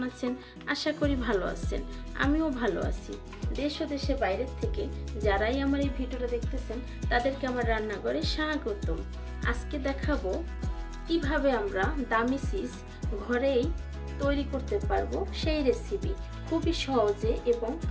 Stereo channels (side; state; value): both; identical; correlation 1.00